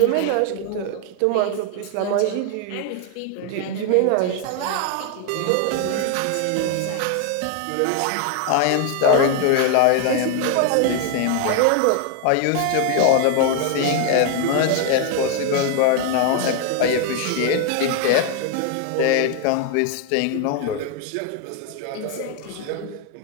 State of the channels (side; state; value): both; different; correlation 0.01